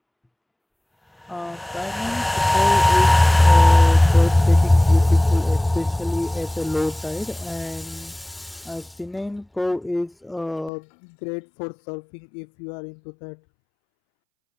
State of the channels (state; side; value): drops out; right; at 10.7 s